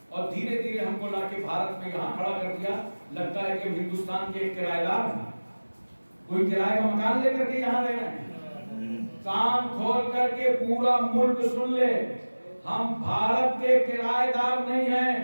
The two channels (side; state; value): both; inverted; correlation -1.00